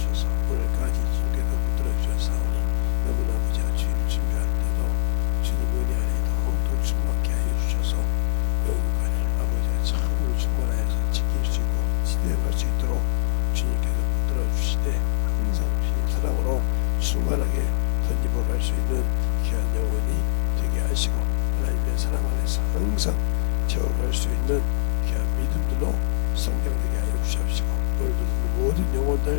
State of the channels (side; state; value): right; silent; 63 dB below the other